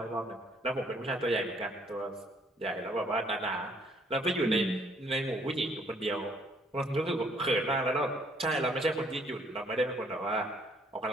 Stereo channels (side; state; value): both; normal; correlation 0.64